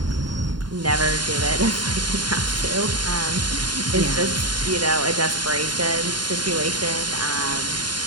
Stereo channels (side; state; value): left; late; 0.71 ms